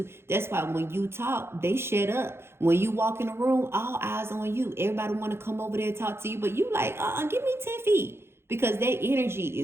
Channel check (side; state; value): left; late; 0.12 ms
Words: That's why when you talk, they shut up. When you walk in the room, all eyes on you. Everybody want to come over there and talk to you. But you like, give me 10 feet. Because their energy